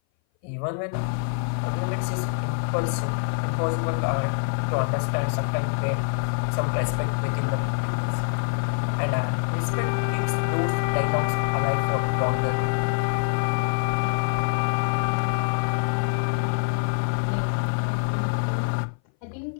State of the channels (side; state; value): right; silent; 59 dB below the other